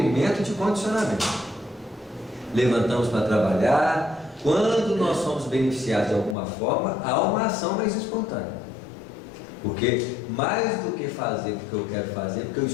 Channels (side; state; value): right; drops out; at 6.4 s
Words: de condicionamento. Levantamos para trabalhar. Quando nós somos beneficiados de alguma forma, há uma ação mais espontânea. Porque mais do que fazer porque eu quero fazer, porque eu